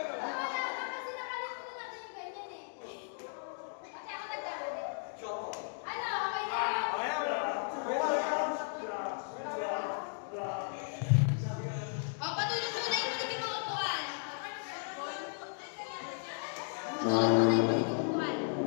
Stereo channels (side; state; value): right; silent; digital silence